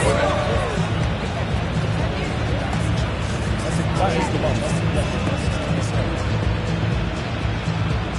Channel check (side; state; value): both; identical; correlation 1.00